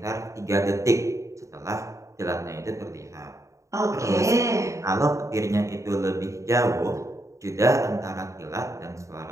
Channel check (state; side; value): late; left; 0.15 ms